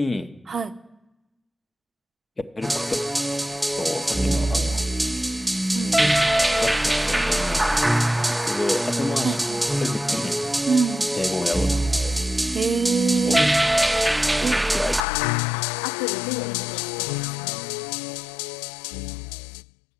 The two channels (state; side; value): drops out; right; at 15.0 s